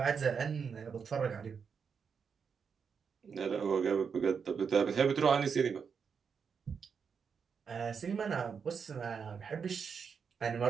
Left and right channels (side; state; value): left; quieter; 6.3 dB